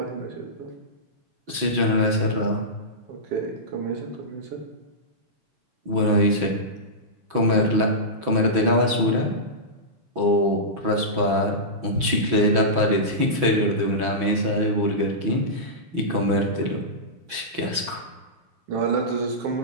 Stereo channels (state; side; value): late; left; 6.1 ms